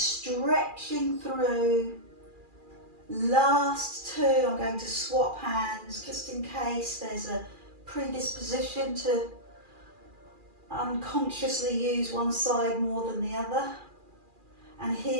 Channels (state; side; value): late; left; 2.4 ms